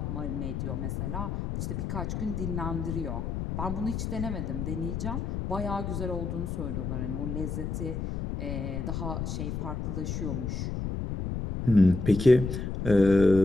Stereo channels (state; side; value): noise; left; rumble, 3 dB below the sound